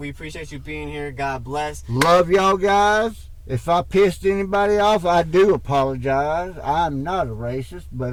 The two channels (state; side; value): identical; both; correlation 1.00